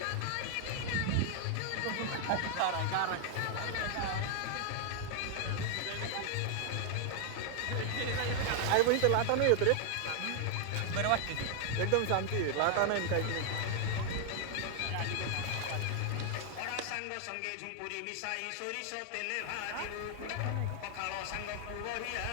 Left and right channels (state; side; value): different; both; correlation 0.00